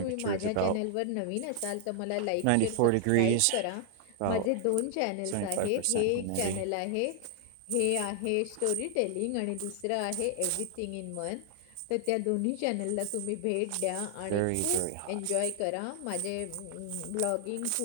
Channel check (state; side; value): different; both; correlation 0.00